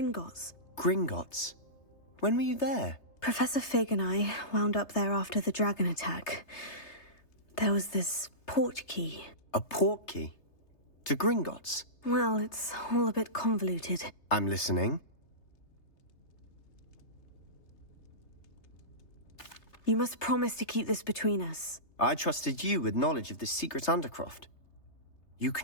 Gringotts? When were you there? Professor Fig and I wound up there after the dragon attack. There was this port key. A port key? To Gringotts? Well, it's all a bit convoluted. I'm listening. You must promise to keep this between us. I trusted you with knowledge of the secret Undercroft. You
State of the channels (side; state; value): right; late; 3.3 ms